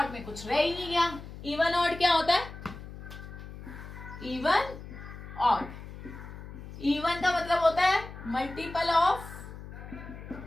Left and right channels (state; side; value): noise; left; hum, 13 dB below the sound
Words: में कुछ रह ही नहीं गया। इवन ऑड क्या होता है? इवन ऑड, इवन का मतलब होता है मल्टीपल ऑफ